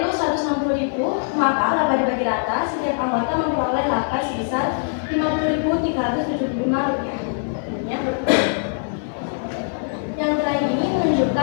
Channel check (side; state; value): right; silent; digital silence